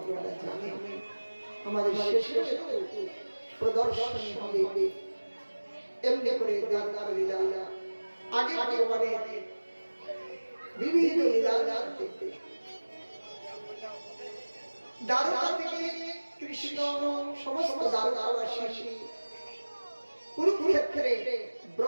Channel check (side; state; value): both; inverted; correlation -1.00